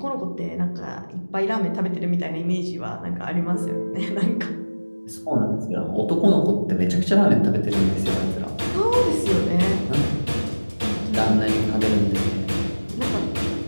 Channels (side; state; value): both; inverted; correlation -1.00